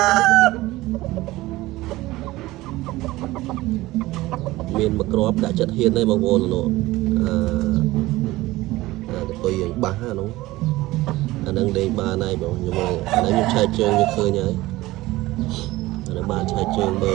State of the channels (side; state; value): left; quieter; 18.4 dB